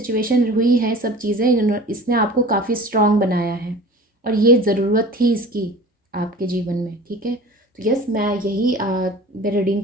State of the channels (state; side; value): normal; both; correlation 0.41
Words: हुई है, सब चीज़ें इसने आपको काफ़ी स्ट्रॉन्ग बनाया है, और ये ज़रूरत थी इसकी आपके जीवन में, ठीक है? तो यस, मैं यही रीडिंग